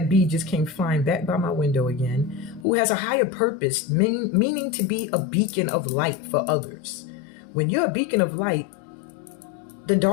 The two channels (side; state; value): right; drops out; at 2.7 s